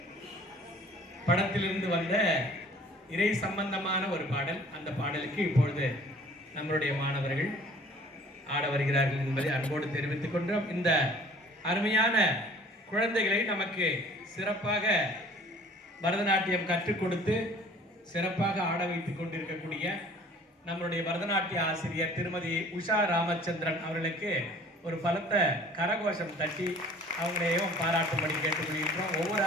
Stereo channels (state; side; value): normal; both; correlation 0.51